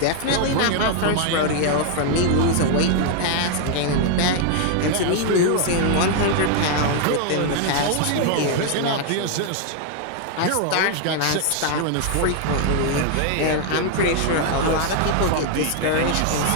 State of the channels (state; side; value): different; both; correlation 0.00